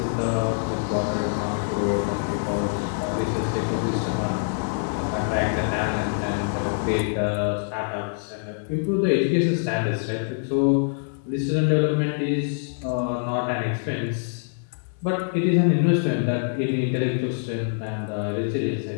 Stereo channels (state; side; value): silent; right; 62 dB below the other